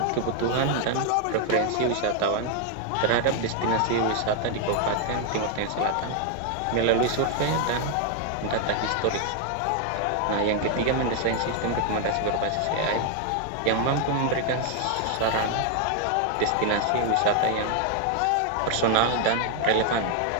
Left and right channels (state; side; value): different; both; correlation 0.01